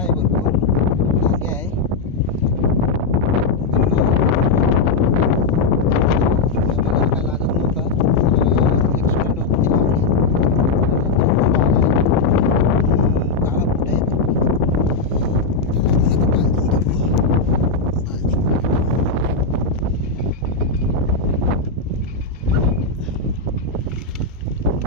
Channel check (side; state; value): right; quieter; 4.1 dB